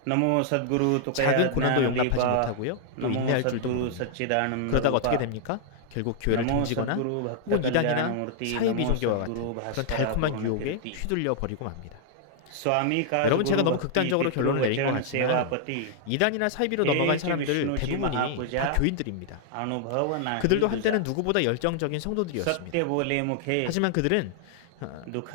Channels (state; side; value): different; both; correlation 0.00